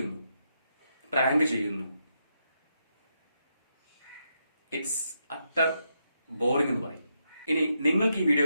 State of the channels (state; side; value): inverted; both; correlation -0.82